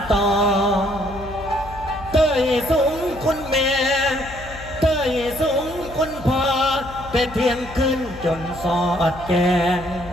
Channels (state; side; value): noise; left; hum, 16 dB below the sound